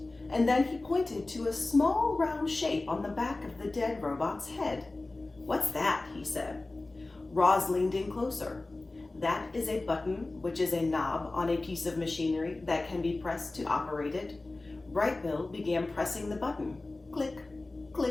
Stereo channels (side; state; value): right; quieter; 3.1 dB